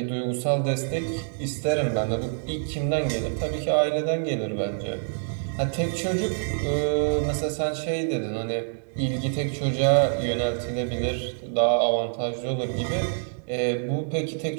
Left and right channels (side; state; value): left; silent; digital silence